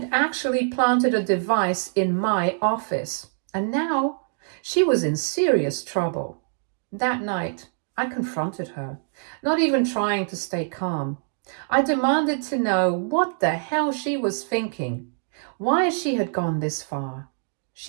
actually planted a device in my office. And now she was in serious trouble. That night, I confronted her, not even trying to stay calm. I demanded to know what the hell she was thinking, why she had gone this far.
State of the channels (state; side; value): silent; left; digital silence